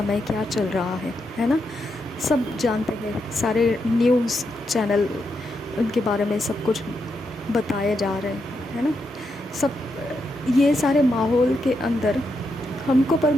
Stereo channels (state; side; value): normal; both; correlation 0.83